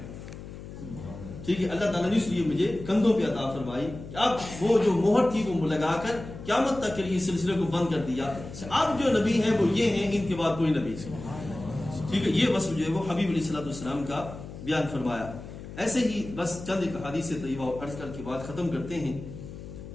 ٹھیک ہے، اللہ تعالیٰ نے اس لیے مجھے کندھوں پہ عطا فرمائی کہ اب وہ جو مہر تھی وہ لگا کر قیامت تک کے لیے اس سلسلے کو بند کر دیا. اب جو نبی ہیں وہ یہ ہیں، ان کے بعد کوئی نبی. ٹھیک ہے، یہ وصف جو ہے وہ حبیب علیہ الصلوۃ والسلام کا بیان فرمایا. ایسے ہی بس چند ایک حدیث طیبہ عرض کر کے بعد ختم کرتے ہیں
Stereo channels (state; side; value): noise; left; hum, 12 dB below the sound